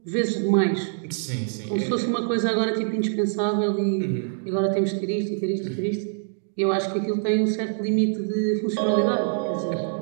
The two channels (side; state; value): left; silent; digital silence